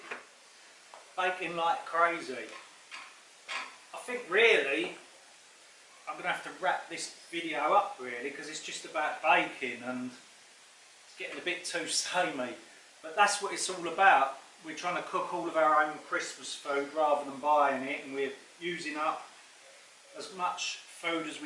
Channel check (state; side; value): identical; both; correlation 1.00